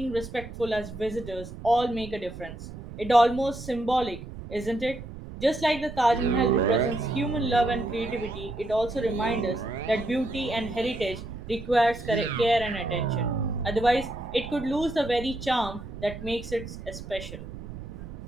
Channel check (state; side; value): noise; right; rumble, 12 dB below the sound